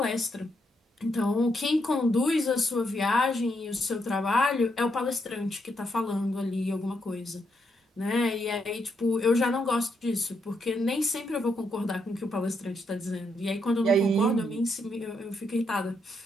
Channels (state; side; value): normal; both; correlation 0.79